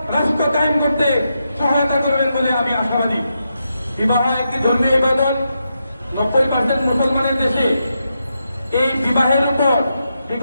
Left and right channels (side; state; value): both; inverted; correlation -0.85